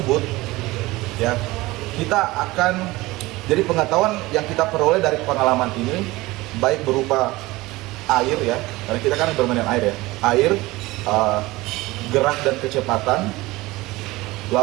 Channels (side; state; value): left; quieter; 20.1 dB